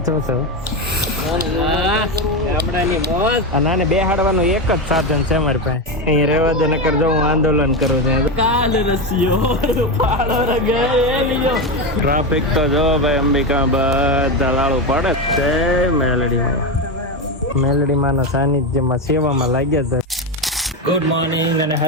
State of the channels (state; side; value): normal; both; correlation 0.14